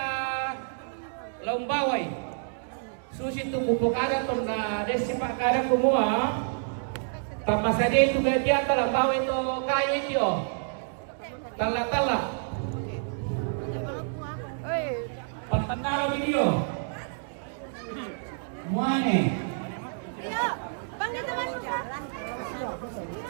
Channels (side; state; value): left; silent; digital silence